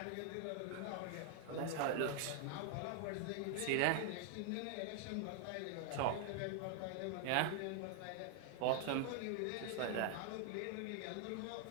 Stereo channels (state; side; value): different; both; correlation 0.00